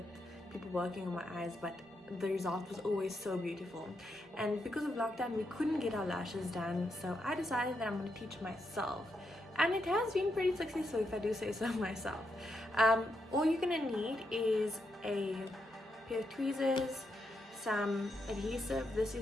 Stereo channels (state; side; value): normal; both; correlation 0.82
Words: people working on my eyes, but the result was always so beautiful. And because of lockdown we couldn't get our lashes done, so I decided that I'm going to teach myself, and it has been pretty successful if I do say so myself. All you're gonna need is a pair of tweezers, some adhesive. This